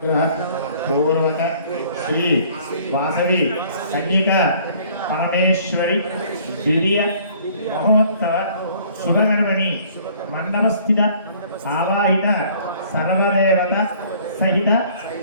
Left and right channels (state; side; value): inverted; both; correlation -0.56